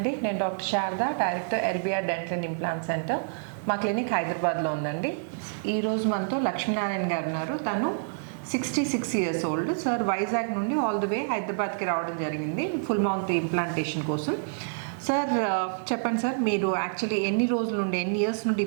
నేను doctor Sharada, director LBR dental and implant centre. మా క్లినిక్ హైదరాబాద్లో ఉందండి. ఈరోజు మనతో లక్ష్మీనారాయణ గారు ఉన్నారు. తను 66 years ఓల్డ్. సార్ వైజాగ్ నుండి ఆల్ ది వే హైదరాబాద్కి రావడం జరిగింది ఫుల్ మౌత్ ఇంప్లాంటేషన్ కోసం. సార్ చెప్పండి సార్, మీరు యాక్చువల్లీ ఎన్ని రోజుల నుండి, ఎన్ని ఇయర్స్ నుండి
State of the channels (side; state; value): left; silent; digital silence